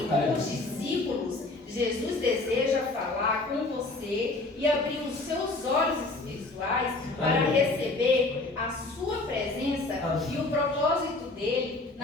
como os discípulos, Jesus deseja falar com você e abrir os seus olhos espirituais para receber a sua presença e o propósito dele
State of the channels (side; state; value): right; quieter; 3.1 dB